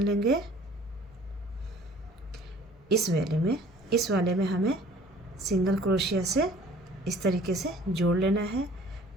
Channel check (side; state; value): both; normal; correlation 0.52